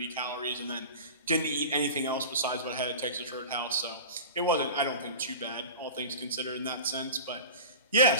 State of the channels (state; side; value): inverted; both; correlation -0.35